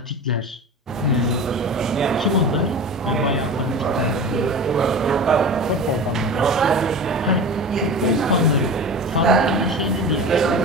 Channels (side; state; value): both; normal; correlation 0.32